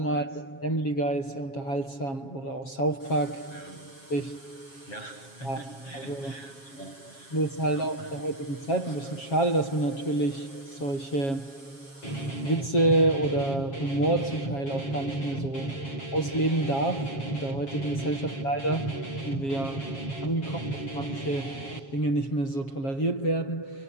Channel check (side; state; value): right; late; 7.3 ms